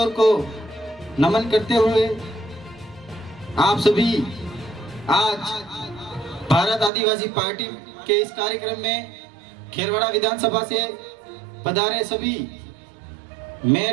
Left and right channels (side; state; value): left; drops out; at 6.9 s